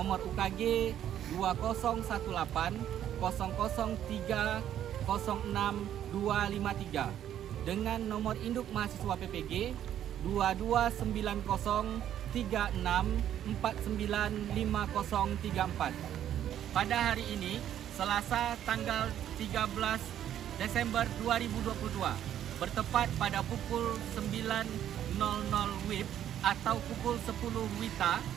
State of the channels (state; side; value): quieter; left; 10.8 dB